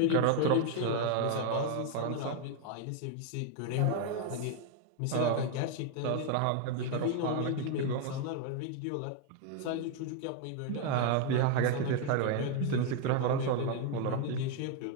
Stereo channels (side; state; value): both; different; correlation 0.01